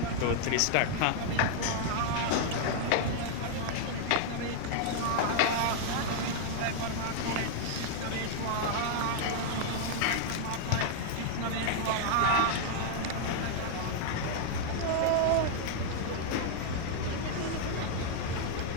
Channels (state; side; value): different; both; correlation -0.01